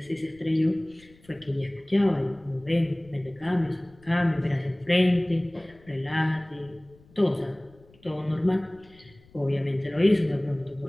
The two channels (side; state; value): left; noise; rumble, 27 dB below the sound